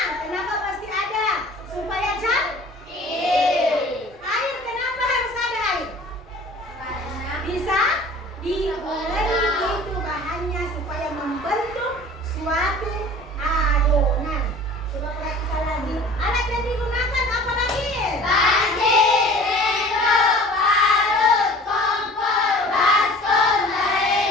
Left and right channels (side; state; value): both; normal; correlation 0.45